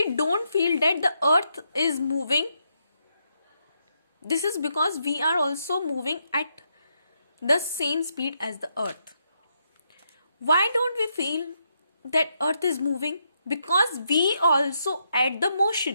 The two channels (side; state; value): both; inverted; correlation -0.80